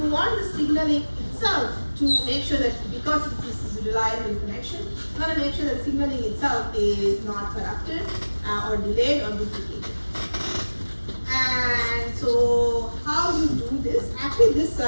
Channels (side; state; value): both; inverted; correlation -1.00